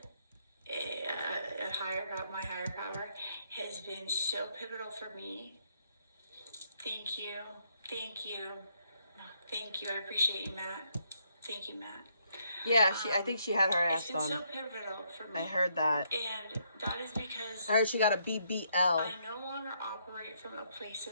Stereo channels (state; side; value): inverted; both; correlation -0.73